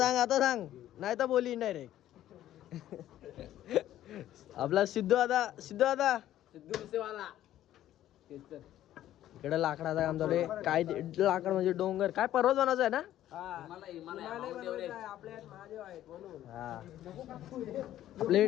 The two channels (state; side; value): quieter; right; 12.8 dB